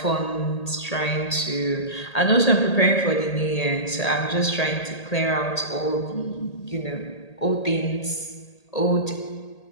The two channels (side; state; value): right; late; 1.8 ms